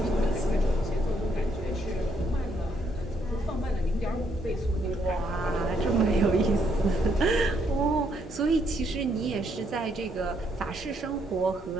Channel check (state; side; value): normal; both; correlation 0.73